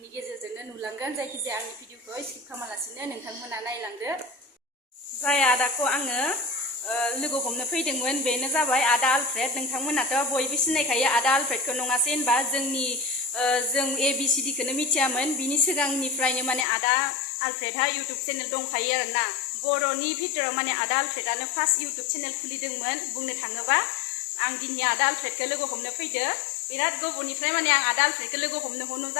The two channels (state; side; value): drops out; right; at 16.7 s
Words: गेजेरजोंनो नुलांगोन। जायखिजाया आंनि भिडिअखौ स्किप खालामालासिनो नोंथांमोना नायलांदो। जाय आदाखौ आङो लोगो हमनो फैदोंमोन बेनो जाबाय आदा आलफ्रेड। नोंथांमोनाथ' बयबो सिनायखायो आदा आलफ्रेडखौ, नङासै होनबा? जों ABCDखौनो मिथियामोन। बिनि सिगांनिफ्रायनो माने आदा आलफ्रेडहा इउटुब चेनेल दंखायो आरोना। बर'नि भितराव माने आदा आलफ्रेडआनो फार्स्ट इउटुब चेनेल खुलिदोंमोन बुंनो थाङोबा। आं दिनै आदा आलफ्रेडखौ लोगो हमनो फैदो। बिराद गोबावनिफ्राय माने आं आदा आलफ्रेडखौ लोगो हमनो